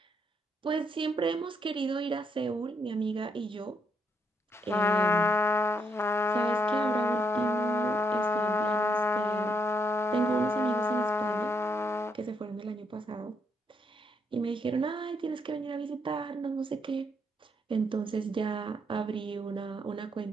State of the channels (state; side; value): normal; both; correlation 0.75